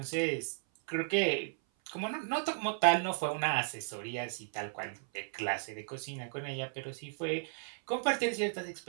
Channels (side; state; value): left; silent; 54 dB below the other